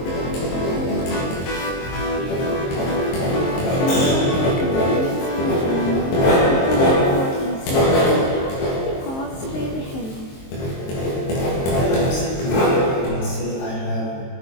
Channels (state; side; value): late; right; 22 ms